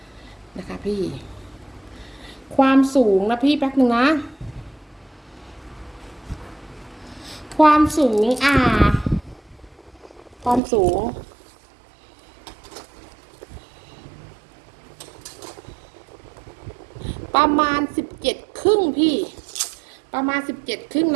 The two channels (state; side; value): drops out; left; at 10.6 s